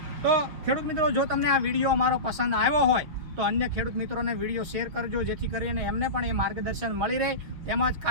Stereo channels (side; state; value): left; late; 6.3 ms